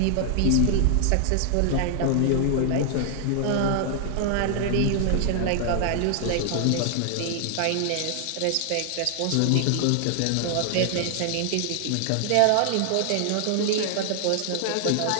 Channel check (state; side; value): different; both; correlation 0.00